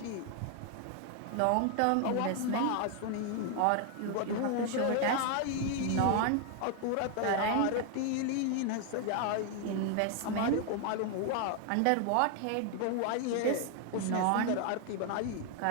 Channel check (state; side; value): different; both; correlation 0.00